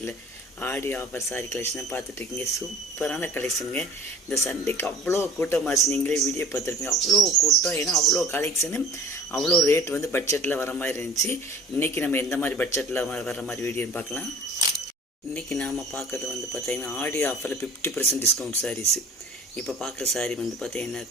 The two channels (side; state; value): both; normal; correlation 0.46